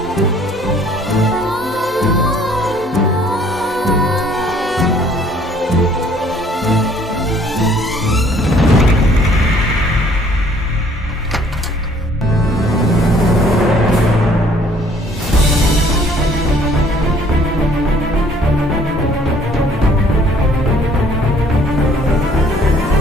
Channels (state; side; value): normal; both; correlation 0.59